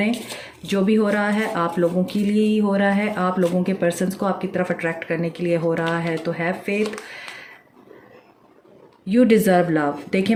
जो भी हो रहा है आप लोगों के लिए ही हो रहा है, आप लोगों के पर्सन्स को आपकी तरफ अट्रैक्ट करने के लिए हो रहा है। तो have faith, you deserve love. देखिए,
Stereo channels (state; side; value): identical; both; correlation 1.00